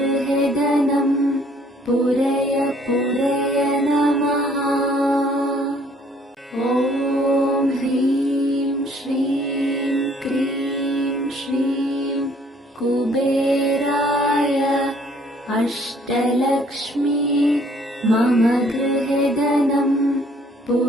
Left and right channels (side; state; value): both; normal; correlation 0.61